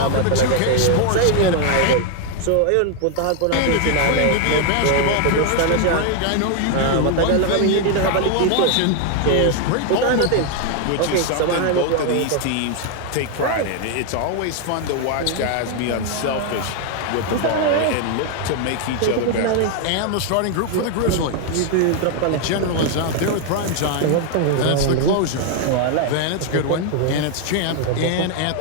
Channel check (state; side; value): different; both; correlation 0.00